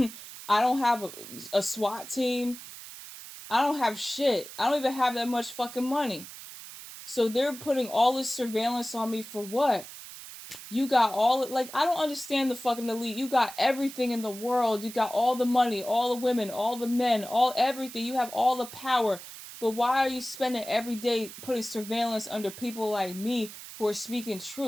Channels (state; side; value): noise; right; hiss, 14 dB below the sound